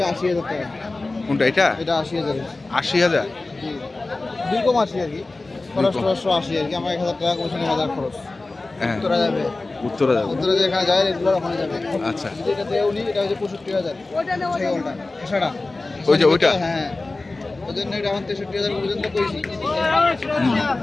80,000 টাকা। কোনটা এটা? এটা 80,000। 80,000? জি, 2.80 আর কি। খরচ 80 আর কি। আমার 1000 টাকা কমিশন, 1000 খরচ। হ্যাঁ, উত্তরা যাবে। উত্তরা যাবে। উত্তরা যেখানে যায় রেগুলার ওখানে যাবে। আচ্ছা, এটা দেও নি, এটা হচ্ছে 65,000। ছাগলটা এছাড়া ওইটা হ্যাঁ, ওই জন্য এটা আমার 63,000 পর্যন্ত কইছি।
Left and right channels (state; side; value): quieter; right; 3.2 dB